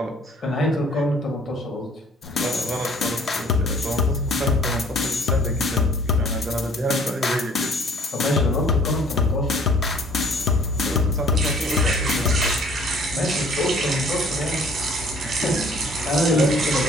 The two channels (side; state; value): both; normal; correlation 0.55